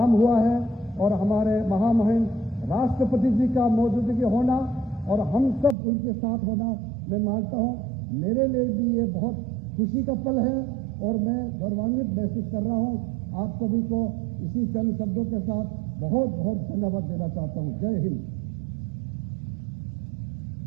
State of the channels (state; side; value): drops out; left; at 5.8 s